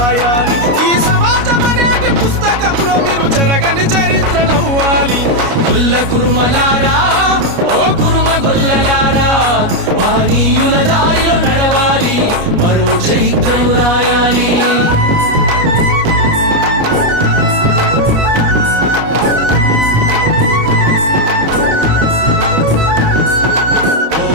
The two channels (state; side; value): late; left; 29 ms